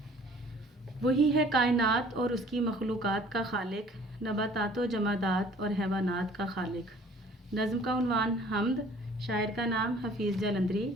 وہی ہے کائنات اور اس کی مخلوقات کا خالق، نباتات و جمادات اور حیوانات کا خالق۔ نظم کا عنوان حمد، شاعر کا نام حفیظ جلندری۔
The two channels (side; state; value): both; normal; correlation 0.53